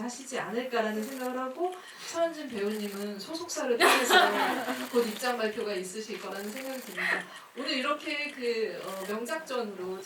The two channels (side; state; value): both; identical; correlation 1.00